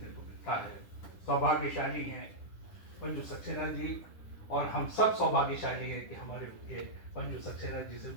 को मिलता है। सौभाग्यशाली हैं मंजू सक्सेना जी, और हम सब सौभाग्यशाली हैं कि हमारे उनके मंजू सक्सेना जी से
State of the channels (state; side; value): late; right; 10 ms